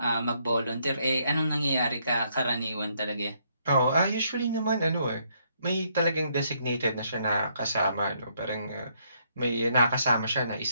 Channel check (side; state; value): both; inverted; correlation -0.71